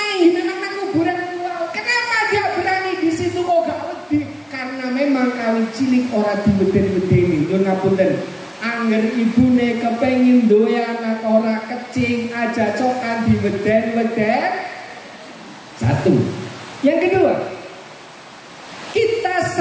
nang kuburan wow. Kenapa dia berani di situ kok gak wedi? Karena memang kali cilik ora diweden-wedeni. Nyuwun ngapunten. Angger ibune kepengin duwe anak ora kecing aja cokan diweden-weden. Satu. Yang kedua, kita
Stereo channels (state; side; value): identical; both; correlation 1.00